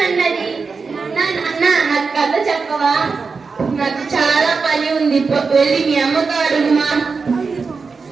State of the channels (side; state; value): left; quieter; 4.8 dB